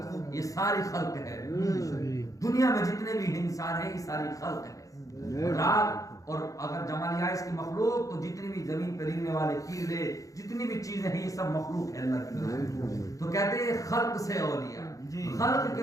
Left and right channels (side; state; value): right; late; 0.16 ms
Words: یہ ساری خلق ہے، دنیا میں جتنے بھی انسان ہیں یہ ساری خلق ہے، رات اور اگر جمع لیا اس کی مخلوق تو جتنی بھی زمین پہ رہنے والے کیڑے جتنی بھی چیزیں ہیں یہ سب مخلوق ہے اللہ کی طرف۔ تو کہتے ہیں خلق سے اولیاء، خلق